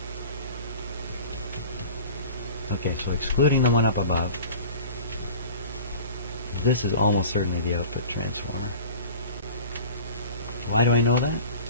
Okay, so excluding the one up above, this is almost certainly the output transformer. Why do I know that?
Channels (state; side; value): inverted; both; correlation -0.40